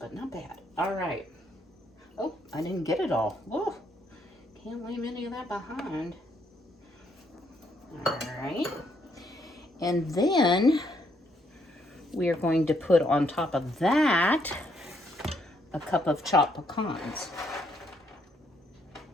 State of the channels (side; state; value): both; normal; correlation 0.72